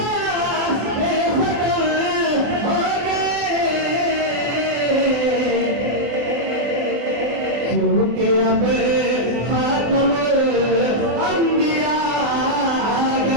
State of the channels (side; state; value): left; late; 24 ms